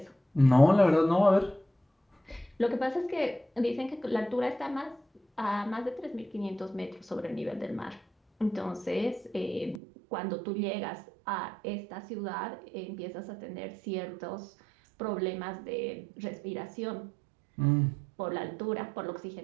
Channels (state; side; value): drops out; left; at 9.8 s